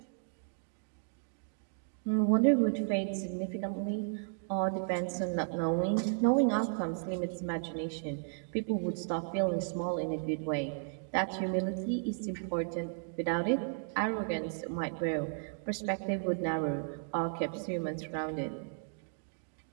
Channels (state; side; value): silent; left; digital silence